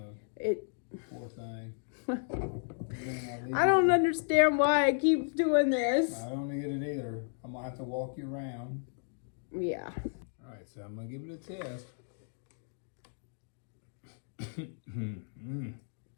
It. Poor thing. I don't understand why I keep doing this. I don't get it either. I'm gonna have to walk you around. Yeah. All right, so I'm gonna give it a test.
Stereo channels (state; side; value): silent; right; digital silence